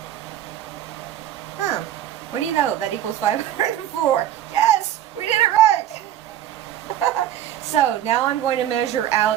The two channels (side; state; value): left; quieter; 11.7 dB